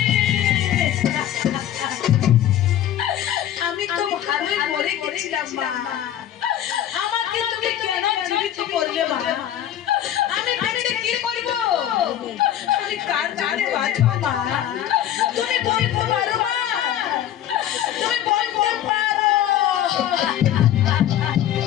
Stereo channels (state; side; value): quieter; right; 11.3 dB